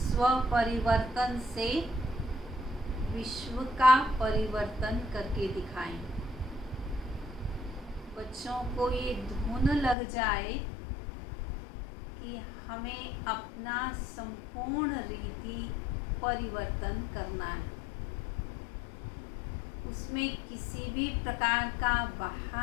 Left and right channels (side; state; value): right; drops out; at 10.0 s